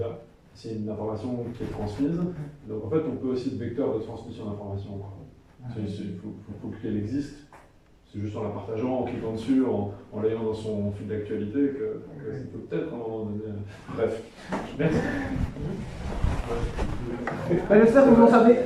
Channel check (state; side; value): identical; both; correlation 1.00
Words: C'est une information qui est transmise. Donc en fait, on peut aussi être vecteur de transmission d'informations. Il faut qu'elle existe. C'est juste en la partageant, en cliquant dessus, en l'ayant dans son fil d'actualité que ça peut peut-être à un moment donné. Bref. Merci. J'espère que vous en savez